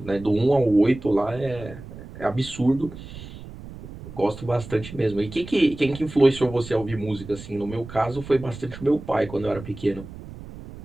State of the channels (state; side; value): noise; right; rumble, 14 dB below the sound